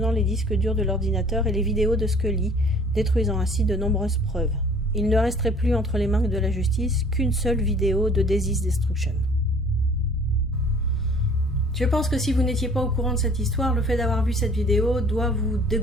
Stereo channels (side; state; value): both; normal; correlation 0.52